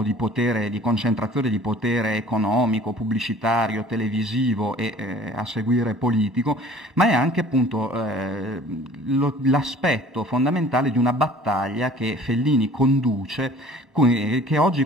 di potere, di concentrazione di potere economico, pubblicitario, televisivo e a seguire politico, ma è anche appunto l'aspetto fondamentale di una battaglia che Fellini conduce, che oggi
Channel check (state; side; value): late; left; 1.1 ms